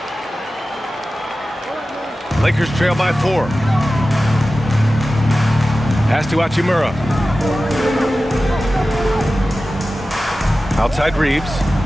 Lakers trail by 4. Pass to Hachimura. Outside Reeves.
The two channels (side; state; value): both; normal; correlation 0.95